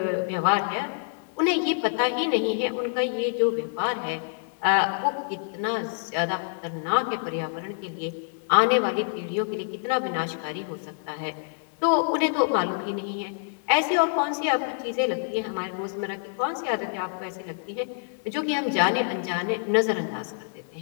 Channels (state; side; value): silent; right; digital silence